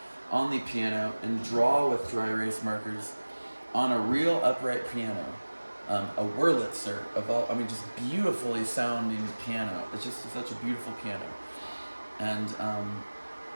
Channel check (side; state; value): both; inverted; correlation -1.00